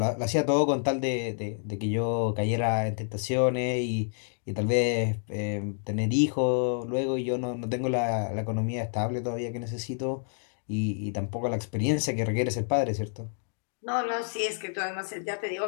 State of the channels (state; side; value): silent; right; digital silence